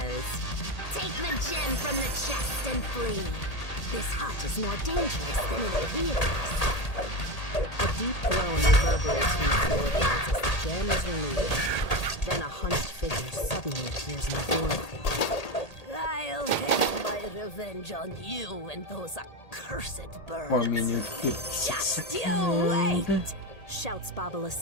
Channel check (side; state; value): right; late; 1.8 ms